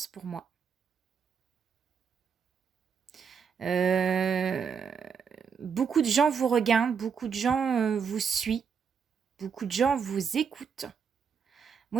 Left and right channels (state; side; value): quieter; left; 6.5 dB